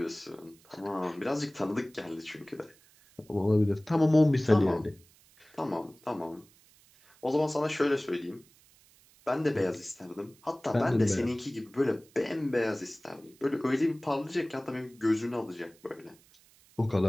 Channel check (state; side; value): noise; right; hiss, 28 dB below the sound